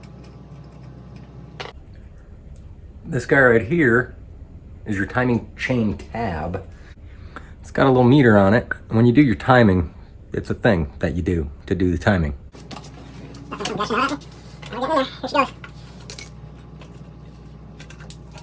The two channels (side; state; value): both; identical; correlation 1.00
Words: This guy right here is your timing chain tab. It's got a little meter on it. When you do your timing, it's a thing that you do to do the timing.